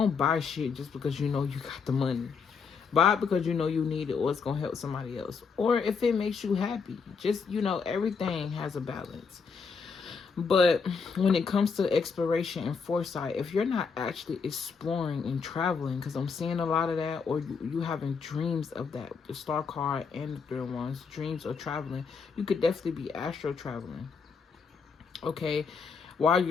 buy shit just because you know you got the money. Buy it because you know you need it, or it's gonna help somebody else, or if it makes you happy. Just, you know, everything has a balance. But when it comes to exploration and foresight, if you're not actually exploring and traveling, because I'm seeing a lot of that, or you having dreams of that, the star card and the third ones, dreams of traveling, you could definitely be astro traveling. Okay, while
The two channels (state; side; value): quieter; right; 5.5 dB